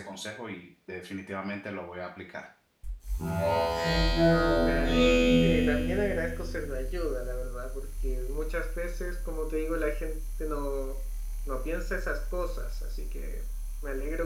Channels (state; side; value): identical; both; correlation 1.00